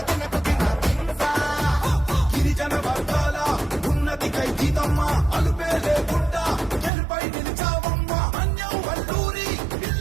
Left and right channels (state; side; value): drops out; left; at 6.9 s